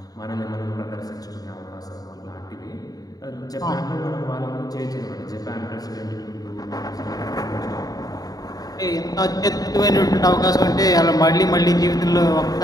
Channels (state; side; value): late; right; 0.18 ms